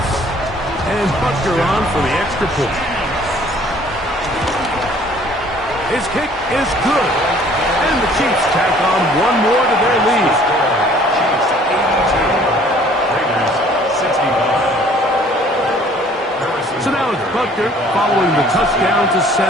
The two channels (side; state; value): both; normal; correlation 0.55